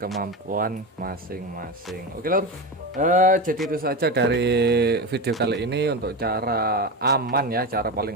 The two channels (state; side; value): normal; both; correlation 0.20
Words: masing-masing. Oke lur, jadi itu saja dari video kali ini untuk cara aman ya, cara paling